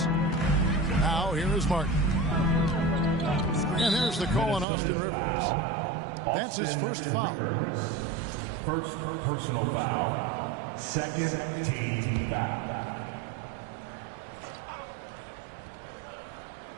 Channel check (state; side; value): drops out; left; at 4.7 s